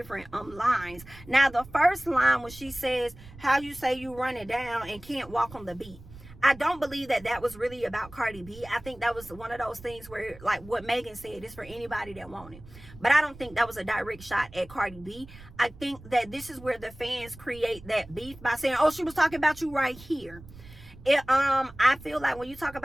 lines. Now the first line, when she says how you say you run it down and can't walk on the beat, I don't believe that was really about Cardi B. I think that was one of those things where, like what Megan said, it's for anybody that want it. But I don't think that was a direct shot at Cardi B. I think that this is where the fans create that beef by saying, oh, she was talking about you right here. I feel like when you talk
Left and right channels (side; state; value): right; noise; rumble, 19 dB below the sound